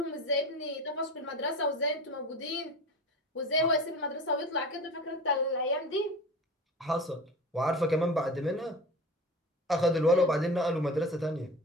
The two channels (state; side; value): normal; both; correlation 0.34